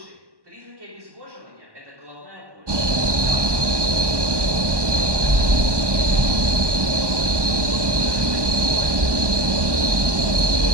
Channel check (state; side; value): late; left; 1.1 ms